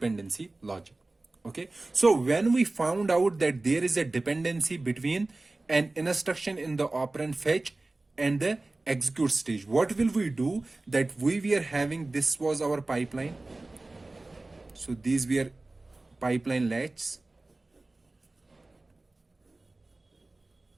logic. Okay, so when we found out that there is a dependency between an instruction in the operand fetch and the execute stage, what will we do? That we were having, this was our pipeline, so these were pipeline latches.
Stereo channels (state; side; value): quieter; left; 3.0 dB